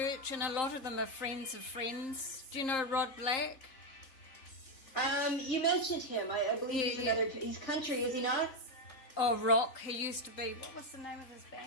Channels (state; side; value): late; right; 3.8 ms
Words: and a lot of them are friends of friends. Do you know Rod Black? You mentioned him. I believe he's country, is he not? Oh, rock. He used to be. What was the name of his